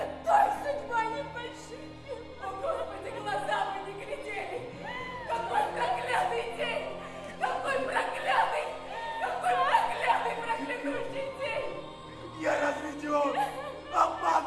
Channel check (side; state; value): both; identical; correlation 1.00